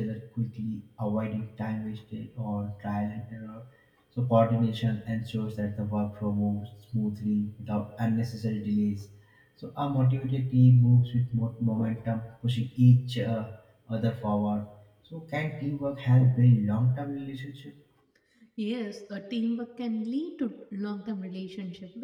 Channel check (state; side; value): identical; both; correlation 1.00